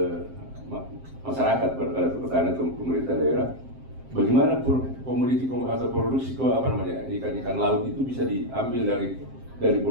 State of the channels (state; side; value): late; left; 7.6 ms